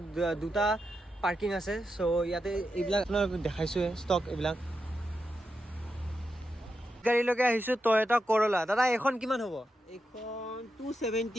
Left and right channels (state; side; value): normal; both; correlation 0.87